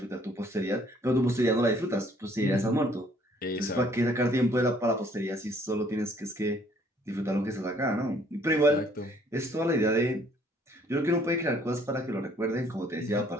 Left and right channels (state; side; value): normal; both; correlation 0.62